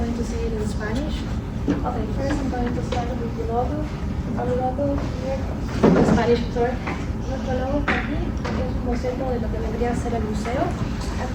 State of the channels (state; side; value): identical; both; correlation 1.00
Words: to say it in Spanish. Okay, first I'm going to start with the logo. Our logo here, the Spanish tour. Nuestro logo está aquí, es un boceto de lo que vendría a ser el museo.